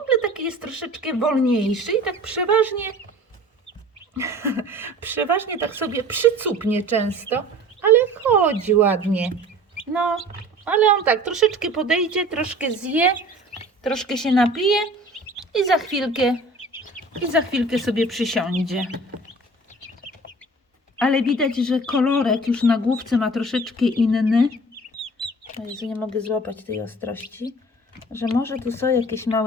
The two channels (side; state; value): both; normal; correlation 0.44